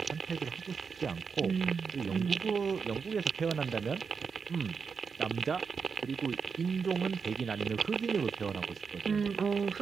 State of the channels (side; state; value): left; quieter; 5.7 dB